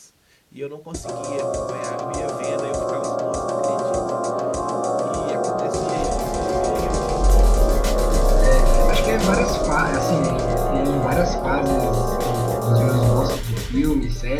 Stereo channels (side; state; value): both; identical; correlation 1.00